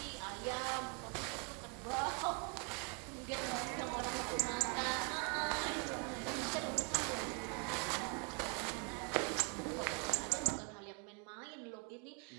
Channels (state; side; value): quieter; left; 36.9 dB